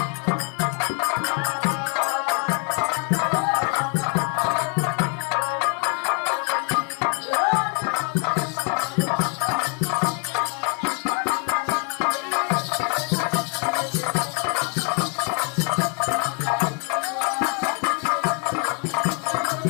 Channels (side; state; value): right; quieter; 38.3 dB